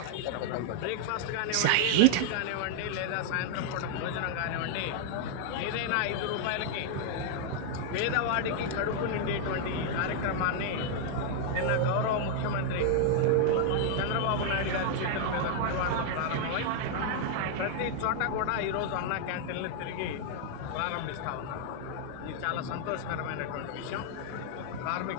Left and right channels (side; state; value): both; different; correlation 0.00